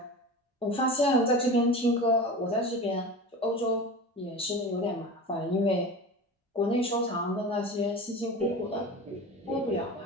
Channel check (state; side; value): normal; both; correlation 0.32